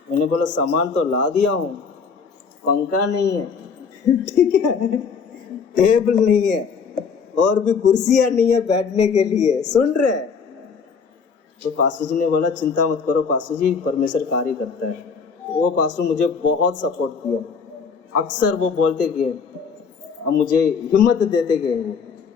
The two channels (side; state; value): right; quieter; 5.7 dB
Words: मैंने बोला सामान तो ला दिया हूँ, पंखा नहीं है, ठीक है, टेबल नहीं है, और भी कुर्सियां नहीं है बैठने के लिए। सुन रहे? तो पास्टर जी ने बोला चिंता मत करो पास्टर जी, परमेश्वर कार्य करता है। वो पास्टर मुझे बहुत सपोर्ट किया, अक्सर वो बोलते गए, अब मुझे हिम्मत देते गए वो।